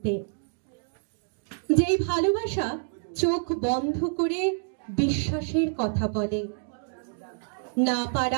যেই ভালোবাসা চোখ বন্ধ করে বিশ্বাসের কথা বলে, না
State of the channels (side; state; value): left; silent; digital silence